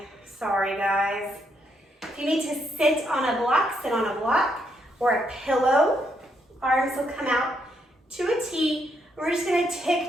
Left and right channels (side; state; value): both; normal; correlation 0.76